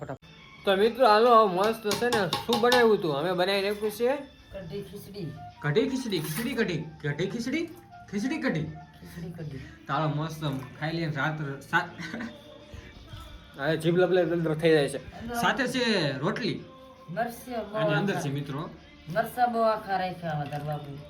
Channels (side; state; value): both; identical; correlation 1.00